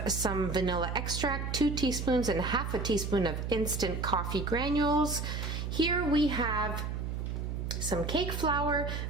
some vanilla extract, 2 teaspoons and half a teaspoon of instant coffee granules. Here we have some cake flour,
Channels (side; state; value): right; noise; hum, 3 dB below the sound